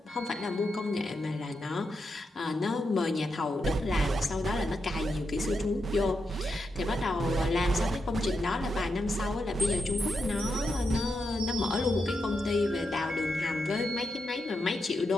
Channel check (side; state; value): both; normal; correlation 0.85